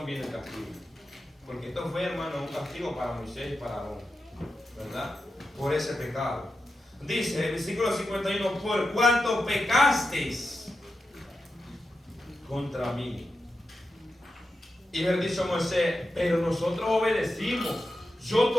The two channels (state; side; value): normal; both; correlation 0.89